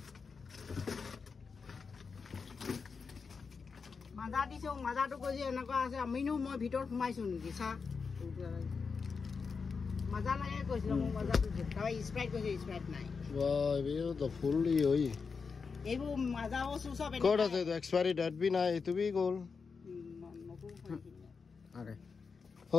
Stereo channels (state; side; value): quieter; right; 5.2 dB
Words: মাজা দিছো মাজাটো কৈছে এনেকুৱা আছে আমিনো মই ভিতৰত সোমাইছো নেকি চা মাজা লাগে কৈছিল মই মাজাটো তাই স্প্ৰাইট কৈছে স্প্ৰাইট নাই वाह ये तो फुल ही होई এইবোৰ মাজাও সব कोड আছে তো एक्सपायरी डेट भी ना ये तो भी गोल নতুন अरे हो